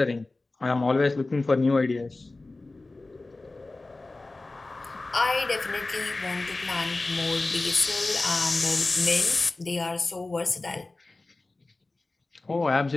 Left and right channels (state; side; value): quieter; right; 3.2 dB